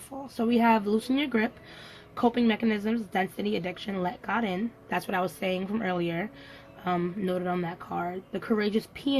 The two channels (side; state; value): both; identical; correlation 1.00